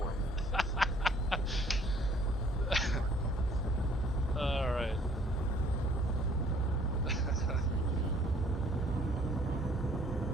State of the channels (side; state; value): both; normal; correlation 0.59